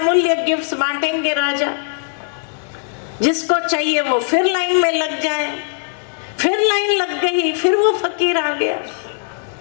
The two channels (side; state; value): right; silent; digital silence